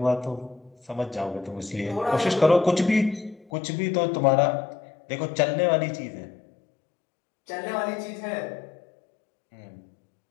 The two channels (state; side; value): drops out; right; at 3.5 s